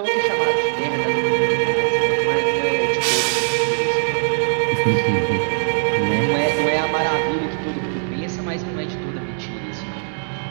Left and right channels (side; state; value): left; silent; digital silence